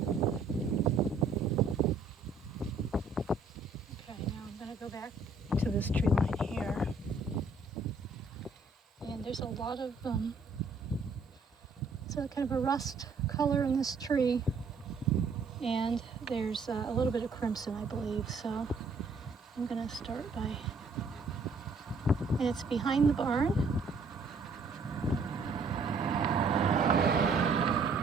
Go back to this tree line here, and there's a lot of it's a kind of a rust color in this tree, and there's a little bit of crimson, I believe. So I'm gonna start by, and it's behind the barn,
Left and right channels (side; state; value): left; quieter; 3.9 dB